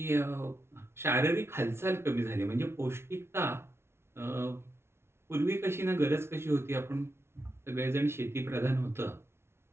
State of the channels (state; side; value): late; left; 0.12 ms